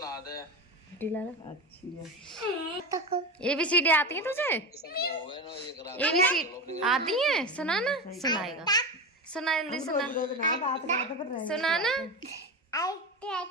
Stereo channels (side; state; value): both; normal; correlation 0.22